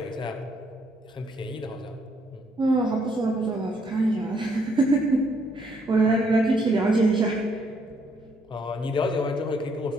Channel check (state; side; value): normal; both; correlation 0.71